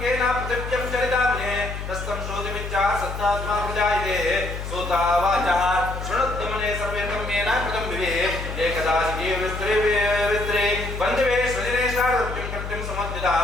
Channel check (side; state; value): left; noise; hum, 7 dB below the sound